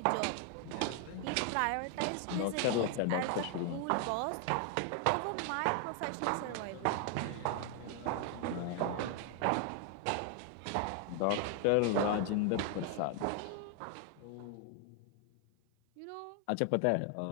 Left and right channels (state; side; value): different; both; correlation 0.00